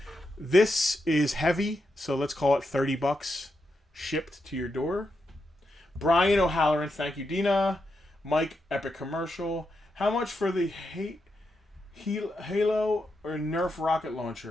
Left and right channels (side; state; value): both; normal; correlation 0.85